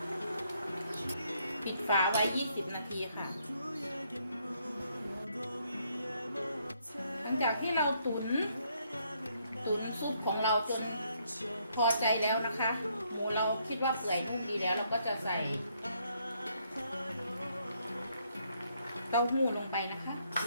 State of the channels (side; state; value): both; inverted; correlation -0.71